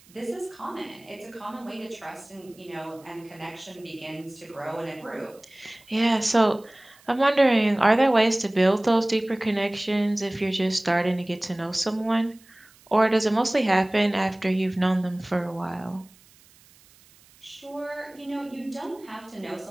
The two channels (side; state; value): right; noise; hiss, 28 dB below the sound